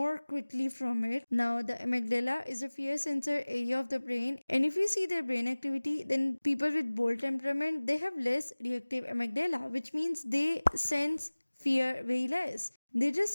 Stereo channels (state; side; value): inverted; both; correlation -1.00